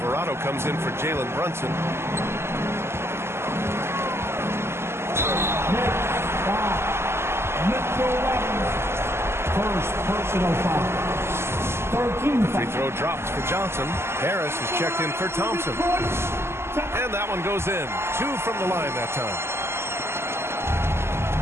comes in for Jalen Brunson. First personal foul. 13 free throw dropped for Johnson. Harris is checked in for Thompson. And that one goes in. 2 from the line that time.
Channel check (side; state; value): left; late; 0.12 ms